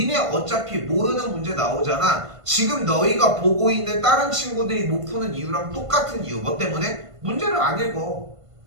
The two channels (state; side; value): late; left; 1.5 ms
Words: 어차피 모르는 문제 나오잖아. 지금 너희가 보고 있는 다른 친구들이 못 푸는 이유랑 똑같은 이유. 뭐 때문에? 문제를 안 읽어.